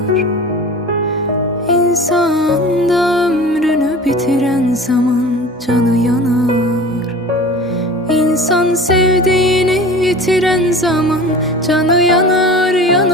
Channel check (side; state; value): both; normal; correlation 0.39